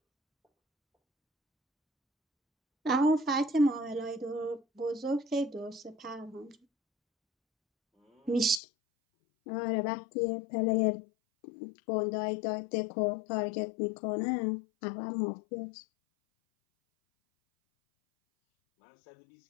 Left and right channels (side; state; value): right; drops out; at 8.6 s